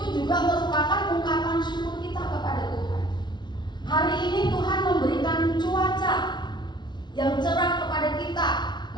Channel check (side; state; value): right; late; 0.21 ms